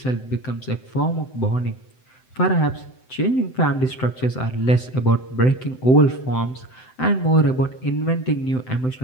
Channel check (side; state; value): right; late; 7.8 ms